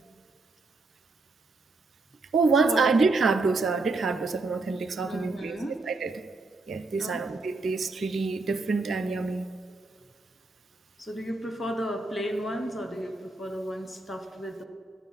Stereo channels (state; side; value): quieter; left; 3.4 dB